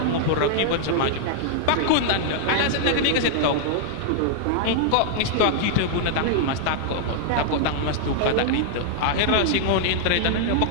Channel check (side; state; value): both; different; correlation -0.01